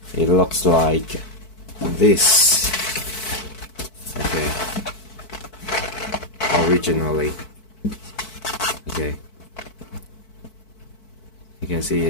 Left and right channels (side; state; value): right; late; 4.6 ms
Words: it looks like this. Okay, originally, okay, you can see